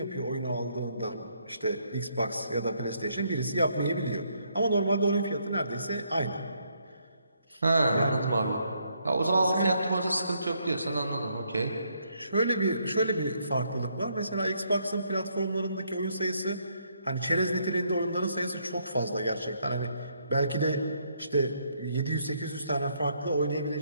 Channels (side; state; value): both; inverted; correlation -0.73